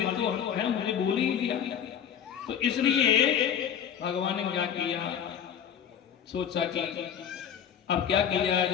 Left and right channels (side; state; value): right; quieter; 8.6 dB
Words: तो है मुझे बोल ही दिया। तो इसलिए भगवान ने क्या किया, सोचा कि अब क्या किया